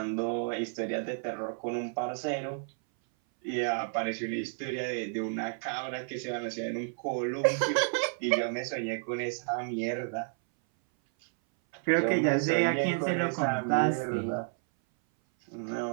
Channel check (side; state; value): left; silent; 57 dB below the other